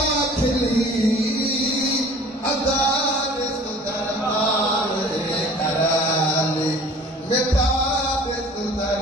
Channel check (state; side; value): normal; both; correlation 0.47